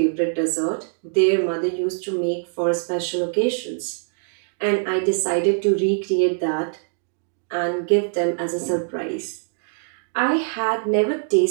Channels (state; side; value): silent; left; digital silence